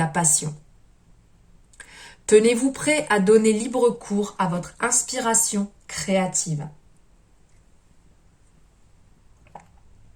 passion. Tenez-vous prêt à donner libre cours à votre inspiration créative.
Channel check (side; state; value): both; identical; correlation 1.00